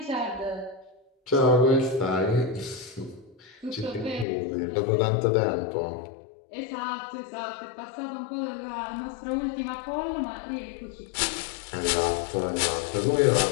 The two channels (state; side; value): drops out; right; at 4.2 s